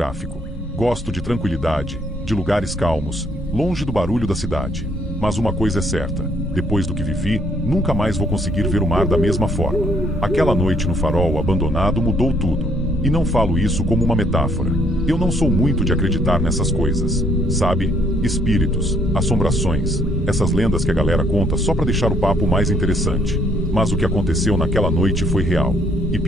Gosto de tranquilidade, de lugares calmos, longe do barulho da cidade. Mas uma coisa é certa, depois do que vivi, nunca mais vou conseguir ver o mar da mesma forma. Aquela noite no farol abandonado mudou tudo. E não falo isso como uma metáfora. Eu não sou muito de acreditar nessas coisas, sabe? Espíritos, assombrações, essas lendas que a galera conta só pra deixar o papo mais interessante. Mas o que aconteceu naquela noite foi real. E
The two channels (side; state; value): both; normal; correlation 0.67